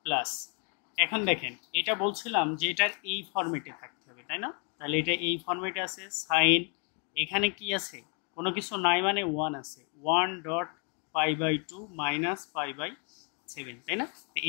plus, এখন দেখেন এটা বলছিলাম যে এটার এই ফরম্যাটে থাকতে হবে, তাই না? তাহলে এটা এই ফরম্যাটে আছে সাইন, এখানে কি আছে? কোনো কিছু নাই মানে 1 আছে, 1 dot pi by 2 minus pi by 7, তাই না? তো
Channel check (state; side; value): quieter; right; 37.8 dB